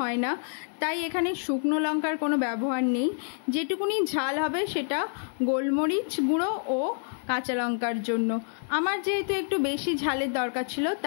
না, তাই এখানে শুকনো লঙ্কার কোনো ব্যবহার নেই। যেটুকুনি ঝাল হবে সেটা গোলমরিচ গুঁড়ো ও কাঁচা লঙ্কার জন্য। আমার যেহেতু একটু বেশি ঝালের দরকার ছিল,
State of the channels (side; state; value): right; silent; 60 dB below the other